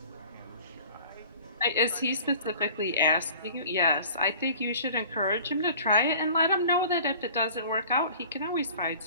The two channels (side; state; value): both; inverted; correlation -0.46